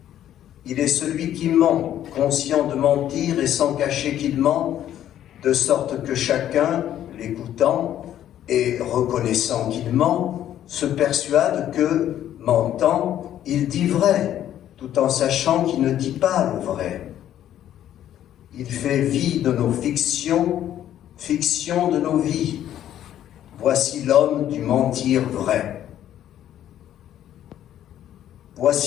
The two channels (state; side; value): quieter; right; 11.4 dB